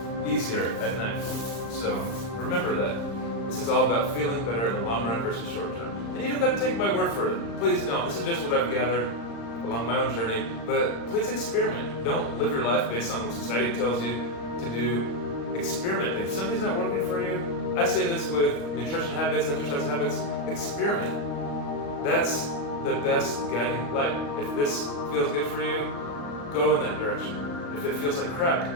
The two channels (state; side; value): late; right; 35 ms